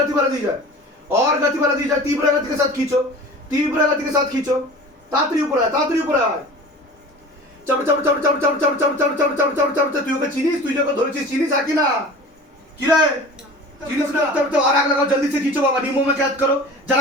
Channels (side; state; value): both; normal; correlation 0.39